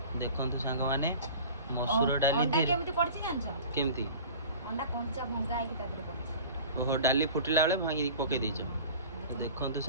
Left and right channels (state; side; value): inverted; both; correlation -0.41